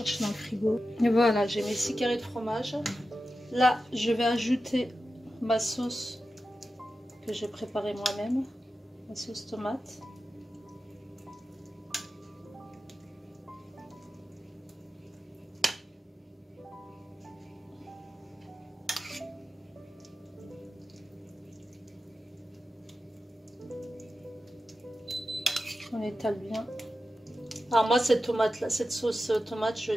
dans le frigo. Et voilà, j'ai mes 6 carrés de fromage. Là, je vais ajouter ma sauce que j'ai préparée moi-même, ma sauce tomate. On étale bien. Alors moi cette tomate là, cette sauce tomate, je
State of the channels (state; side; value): normal; both; correlation 0.92